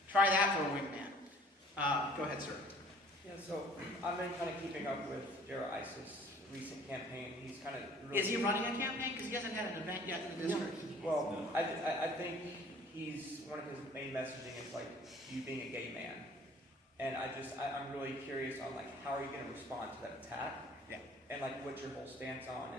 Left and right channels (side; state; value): both; normal; correlation 0.53